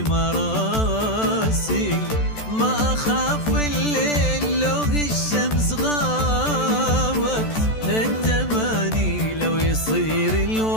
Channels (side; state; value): right; late; 14 ms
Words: راسي. ما أخاف الليل لو الشمس غابت، التماني لو يصير